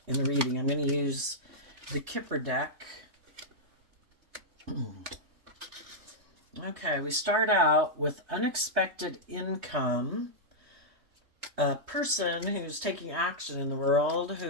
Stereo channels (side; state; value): left; late; 3.2 ms